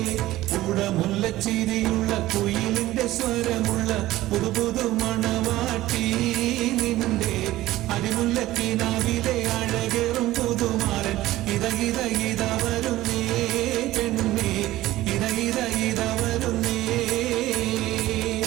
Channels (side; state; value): left; quieter; 16.2 dB